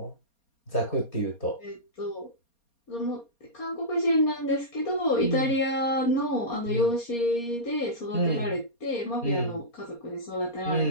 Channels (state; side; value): late; right; 4.3 ms